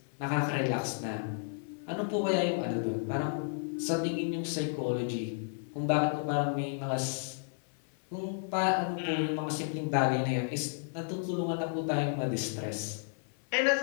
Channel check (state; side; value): silent; right; 56 dB below the other